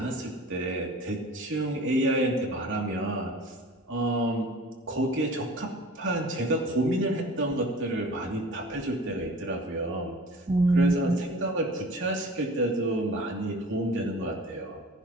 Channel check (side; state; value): both; normal; correlation 0.42